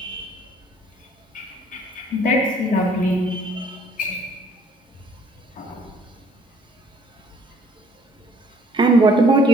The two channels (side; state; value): both; normal; correlation 0.59